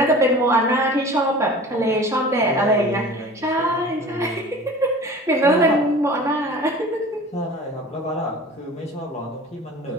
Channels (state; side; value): normal; both; correlation 0.41